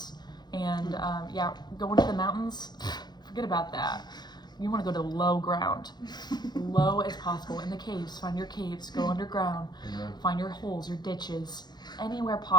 And going to the mountains, forget about that. You want to go to low ground, low as possible. In the caves, find your caves. Go underground, find your holes, your ditches, anywhere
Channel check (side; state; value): right; late; 0.21 ms